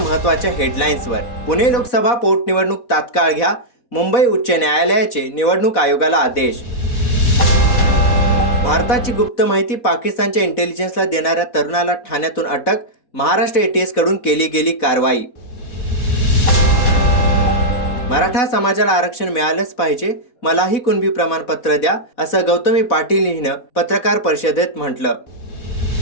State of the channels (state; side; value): late; right; 4.2 ms